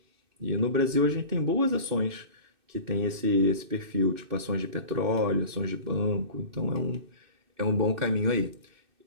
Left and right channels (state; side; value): late; left; 2.6 ms